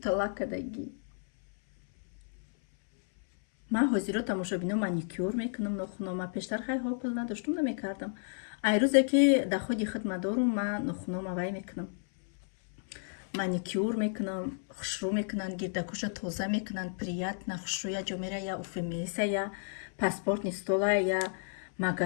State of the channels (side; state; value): right; silent; 56 dB below the other